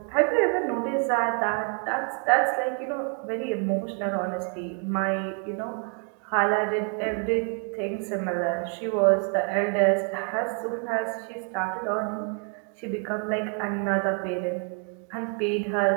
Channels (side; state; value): left; quieter; 38.7 dB